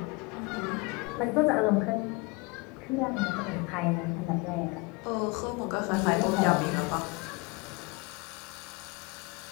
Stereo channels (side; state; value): right; quieter; 26.8 dB